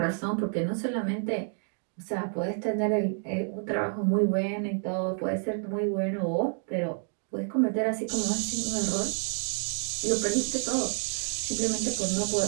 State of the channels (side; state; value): left; silent; 57 dB below the other